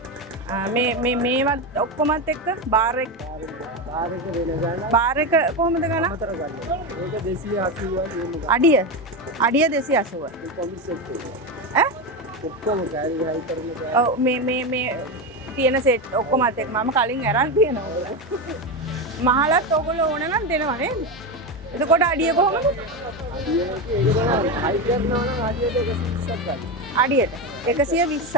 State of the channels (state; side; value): normal; both; correlation 0.15